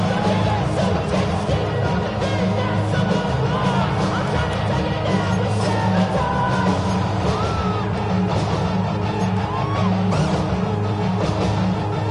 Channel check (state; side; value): identical; both; correlation 1.00